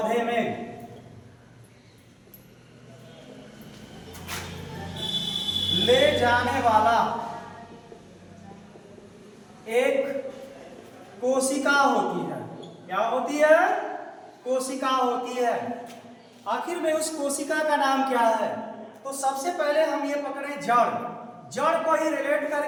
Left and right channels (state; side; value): identical; both; correlation 1.00